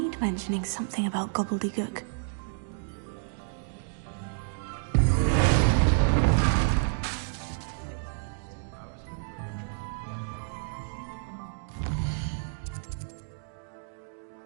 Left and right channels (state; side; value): silent; left; digital silence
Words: mentioning something about gobbledygook.